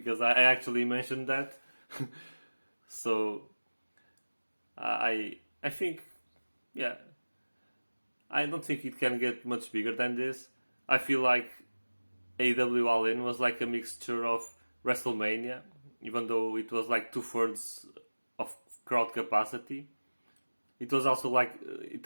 I actually mentioned that. So I think, yeah, I don't think it can get much bigger than this. I feel like AEW All In was like a mixture of WrestleMania, even though it was like 2/3 of crowd capacity. It also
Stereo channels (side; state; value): both; inverted; correlation -1.00